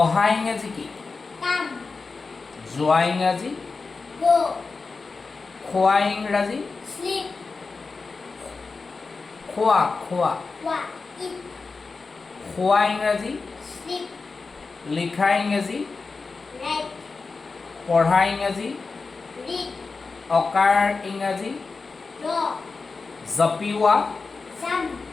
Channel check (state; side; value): quieter; right; 4.3 dB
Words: ইংৰাজী কি? Come, যোৱা ইংৰাজী? go, খোৱা ইংৰাজী? sleep, খোৱা খোৱা। walk, eat, খোৱা ইংৰাজী? sleep, লিখা ইংৰাজী? write, পঢ়া ইংৰাজী? read, অকাৰ ইংৰাজী? draw, জপিওৱা, jump,